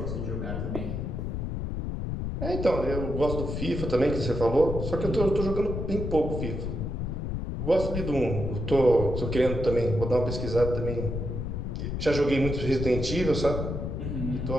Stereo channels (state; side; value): noise; left; rumble, 3 dB below the sound